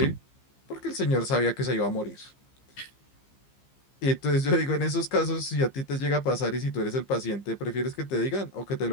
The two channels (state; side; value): late; right; 15 ms